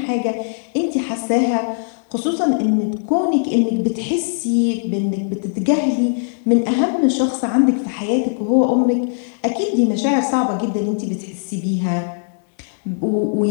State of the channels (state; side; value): silent; right; digital silence